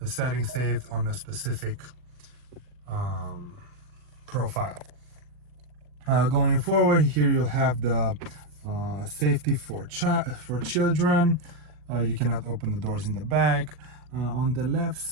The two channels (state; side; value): late; left; 40 ms